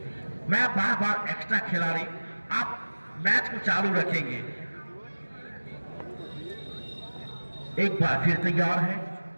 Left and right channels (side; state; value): both; inverted; correlation -1.00